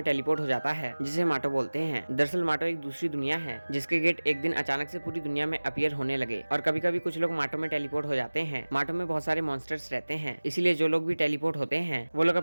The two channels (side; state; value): both; inverted; correlation -1.00